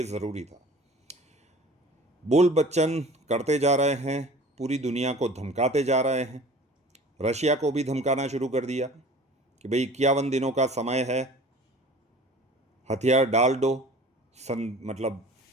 ज़रूरी था। बोल बच्चन करते जा रहे हैं, पूरी दुनिया को धमकाते जा रहे हैं। रशिया को भी धमकाना शुरू कर दिया कि भाई 51 दिनों का समय है, हथियार डाल दो, मतलब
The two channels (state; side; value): normal; both; correlation 0.44